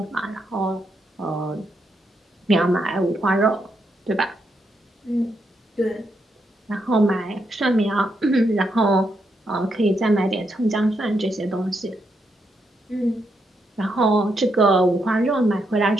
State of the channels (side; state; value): both; normal; correlation 0.80